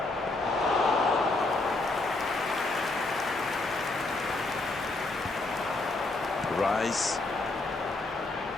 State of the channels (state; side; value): quieter; right; 3.1 dB